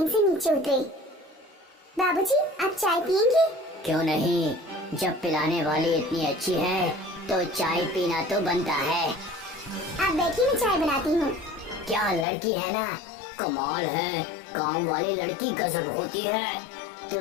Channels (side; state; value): right; drops out; at 12.2 s